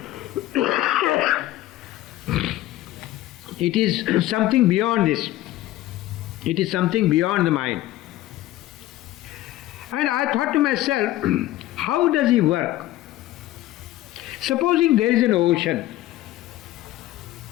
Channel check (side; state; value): right; quieter; 15.5 dB